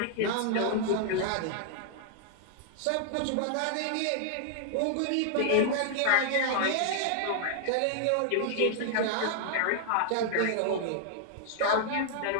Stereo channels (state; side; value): different; both; correlation -0.01